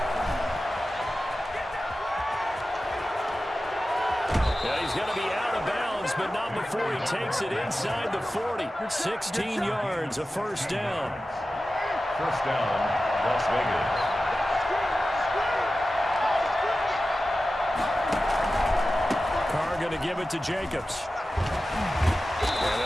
He's going to be out of bounds, but not before he takes it inside the 40. 16 yards, a first down. First down, Las Vegas. Carr going to give it to Jacobs. And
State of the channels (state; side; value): normal; both; correlation 0.94